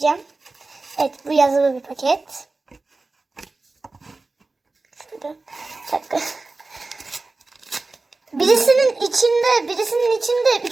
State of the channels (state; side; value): quieter; left; 3.5 dB